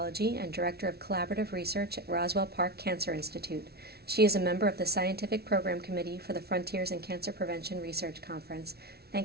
and Director of Collaborative Research at Roswell Park Cancer Institute. She is a member of the Scientific Program Committee for the Frontiers in Cancer Prevention Research Conference.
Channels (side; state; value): left; late; 0.46 ms